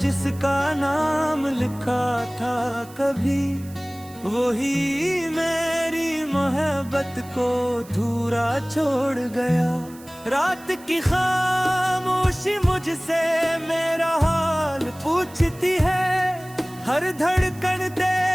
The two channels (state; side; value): noise; right; hiss, 22 dB below the sound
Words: नाम लिखा था कभी, वही मेरी मोहब्बत को धूरा छोड़ गया। रात की खामोशी मुझसे मेरा हाल पूछती है, हर धड़कन